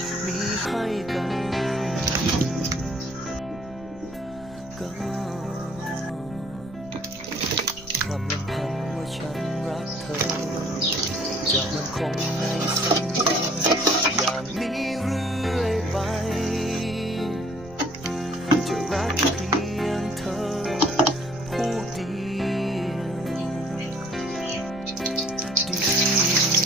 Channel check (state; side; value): noise; right; rumble, 19 dB below the sound